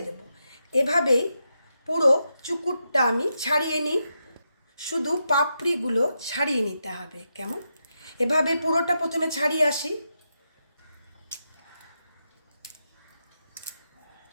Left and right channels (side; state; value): both; inverted; correlation -0.85